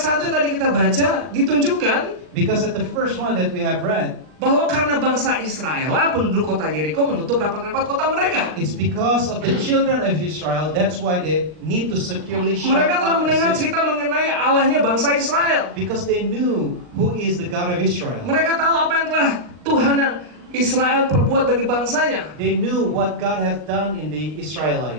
yang tadi kita baca ditunjukkan Because at the first one that we have read, bahwa karena bangsa Israel lah penduduk kota Yeriko menutup rapat-rapat kota mereka. it's because of the children of Israel. That's why they need to securely shut Mereka telah up mendengar the city. cerita mengenai Allahnya bangsa Israel. Because they knew who is the God of Israel. Mereka tahu apa yang telah Tuhan Israel perbuat bagi bangsanya. They knew what God has done in the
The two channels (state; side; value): late; left; 39 ms